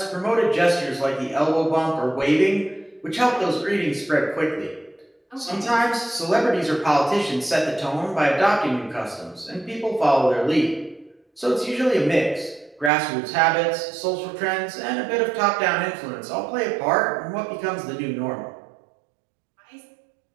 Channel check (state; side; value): drops out; left; at 12.9 s